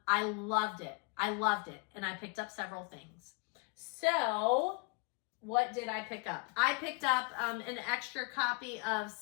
loved it. And I picked up several things. So what did I pick up? I picked up an extra copy of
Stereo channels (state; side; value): quieter; right; 32.6 dB